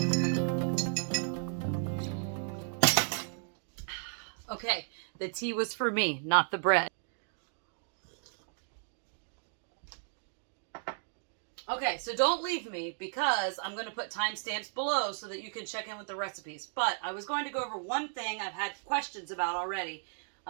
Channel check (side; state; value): left; silent; 55 dB below the other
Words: Okay, the tea was for me, not the bread. Okay, so don't leave me because I'm going to put timestamps below so that you can check in with the recipes. But I was going to go over one thing I've had questions about already,